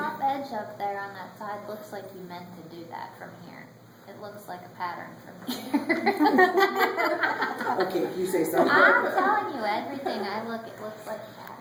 edge up there on that side looks like you meant to do that from here. It looks like a pattern from here. Okay, if you say so. I'm telling you, everything I look, it looks like a pattern.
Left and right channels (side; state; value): both; identical; correlation 1.00